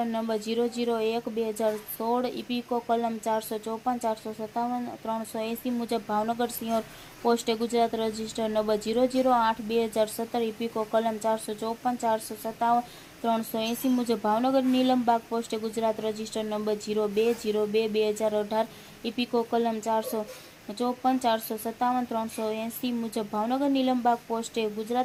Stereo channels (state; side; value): identical; both; correlation 1.00